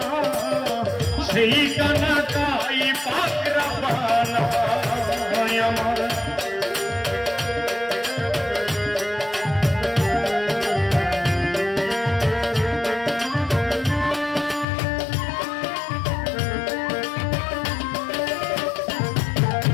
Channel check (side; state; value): right; drops out; at 14.7 s